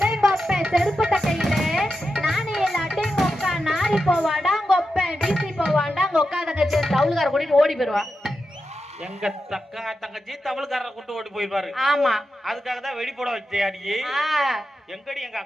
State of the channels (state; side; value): normal; both; correlation 0.89